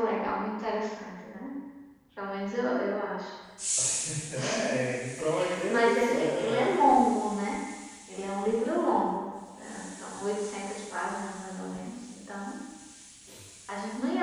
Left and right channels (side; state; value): both; identical; correlation 1.00